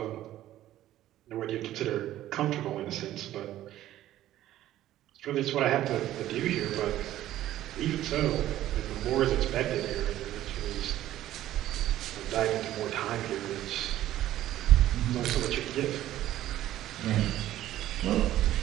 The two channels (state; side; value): quieter; left; 13.5 dB